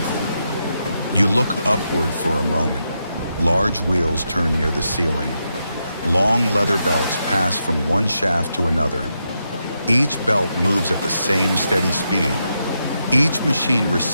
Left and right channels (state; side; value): inverted; both; correlation -0.84